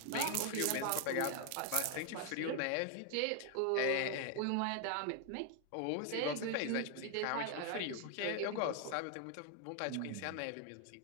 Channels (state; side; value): different; both; correlation 0.00